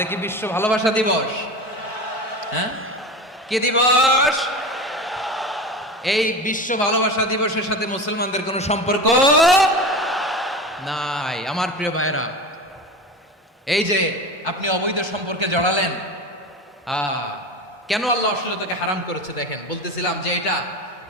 কি বিশ্ব ভালোবাসা দিবস? হ্যাঁ, কি দিবস? এই বিশ্ব ভালোবাসা দিবসের সাথে মুসলমানদের কোনো সম্পর্ক নাই। আমার প্রিয় ভাইরা, এই যে আপনি অবৈধ সম্পর্কে জড়ালেন, কেন আল্লাহ অশ্লীলতাকে হারাম করেছে দেখেন। বলতেছিলাম যে এটা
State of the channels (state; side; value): normal; both; correlation 0.28